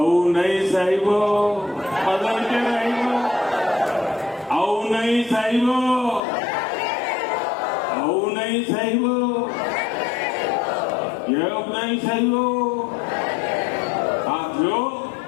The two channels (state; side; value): drops out; right; at 6.2 s